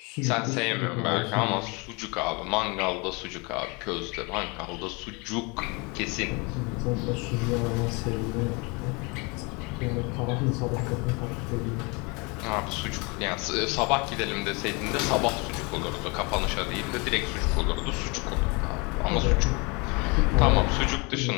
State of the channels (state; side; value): quieter; right; 29.3 dB